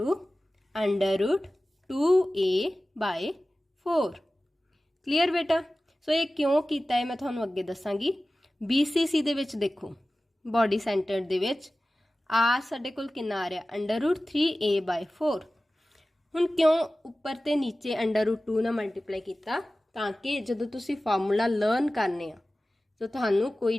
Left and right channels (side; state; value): both; normal; correlation 0.96